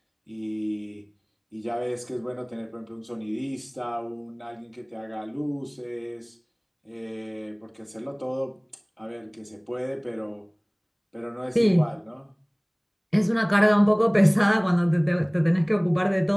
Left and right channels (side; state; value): both; identical; correlation 1.00